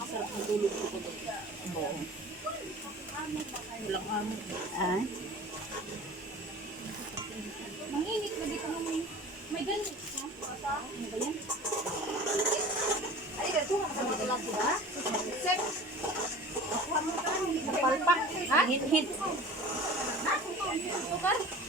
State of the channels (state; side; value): normal; both; correlation 0.40